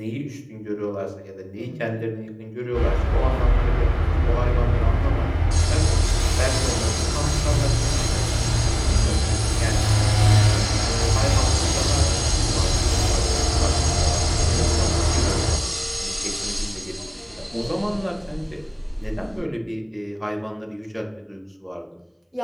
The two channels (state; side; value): identical; both; correlation 1.00